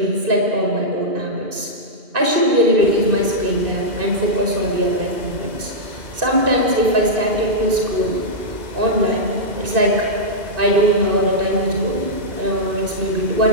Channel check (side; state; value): left; late; 2.5 ms